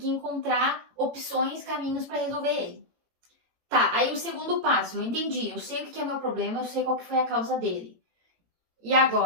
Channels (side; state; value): left; late; 18 ms